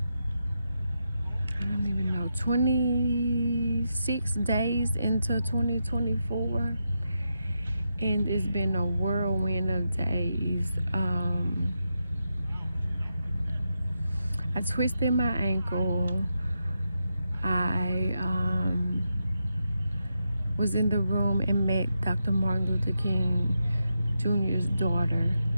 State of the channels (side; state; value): both; inverted; correlation -0.85